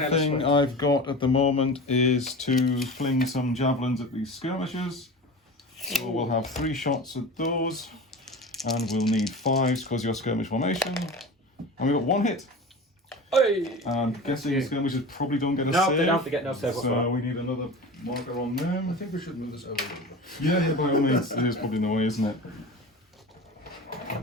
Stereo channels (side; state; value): both; normal; correlation 0.32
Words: thing I've got at the moment is to fling some javelins at these skirmishers. So we'll have 3 shots at those, and we'll need 5s because you're skirmish formation. And we've got 1 hit. Hey! And guessing skirmishers probably don't get a No, save. they don't get no save So whatsoever. we need another marker on I them. think we should move this over a little bit. Yeah, by all means, it is probably in the way, isn't it?